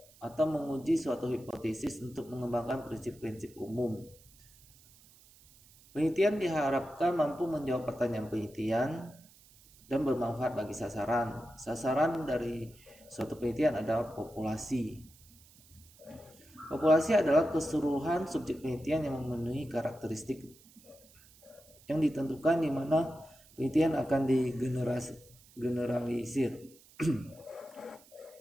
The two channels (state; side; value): noise; right; hiss, 26 dB below the sound